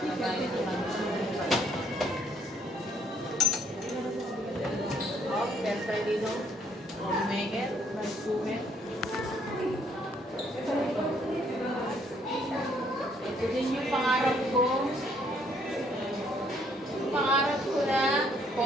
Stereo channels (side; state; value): both; normal; correlation 0.66